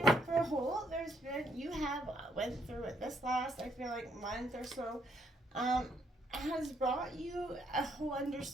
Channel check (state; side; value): normal; both; correlation 0.72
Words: for a whole, you have went through it this last, I feel like, month or so, has brought you a whole